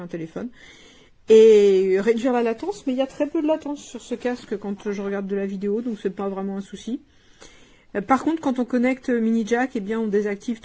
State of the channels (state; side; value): identical; both; correlation 1.00